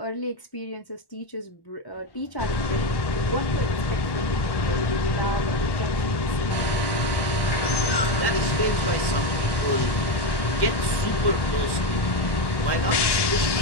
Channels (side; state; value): right; late; 1.1 ms